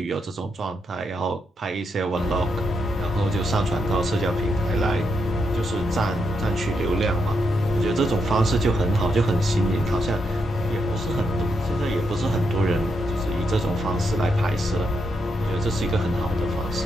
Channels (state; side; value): normal; both; correlation 0.81